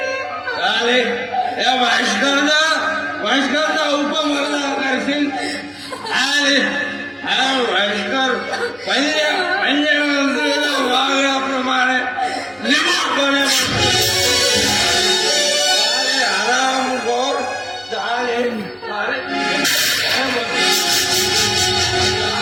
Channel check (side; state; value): both; identical; correlation 1.00